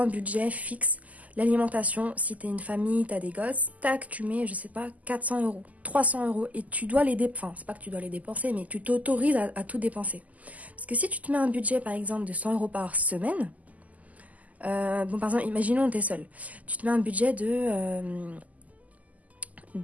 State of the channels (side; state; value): left; late; 0.076 ms